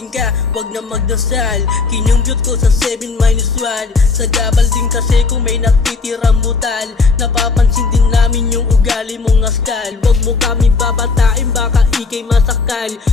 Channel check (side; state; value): right; quieter; 4.5 dB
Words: ka, wag na magdasal. Kinumbyot ko sa 7 minus 1. Sa gabal din kasi kung may natitirang butal. Napapansin din namin yung ugali mong askal. Wag mo kami babatain, baka ikay masakal.